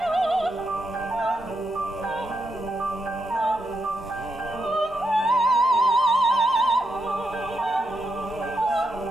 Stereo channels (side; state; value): both; normal; correlation 0.82